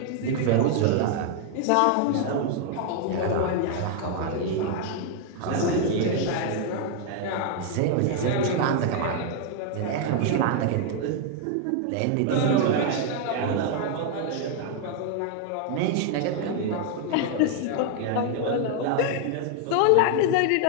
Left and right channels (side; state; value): both; different; correlation 0.00